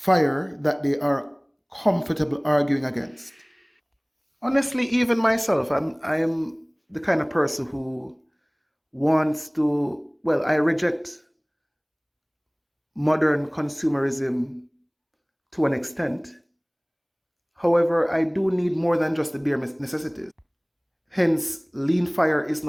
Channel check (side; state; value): both; identical; correlation 1.00